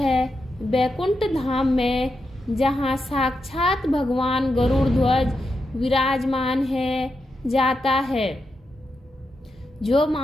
वैकुंठ धाम में, जहाँ साक्षात भगवान गरुड़ ध्वज विराजमान है, जाता है। जो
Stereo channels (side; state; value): both; normal; correlation 0.86